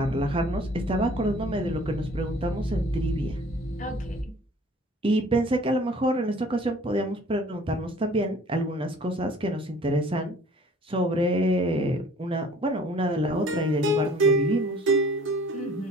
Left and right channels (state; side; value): normal; both; correlation 0.51